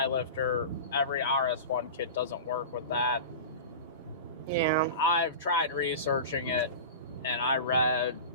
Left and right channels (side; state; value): both; inverted; correlation -0.31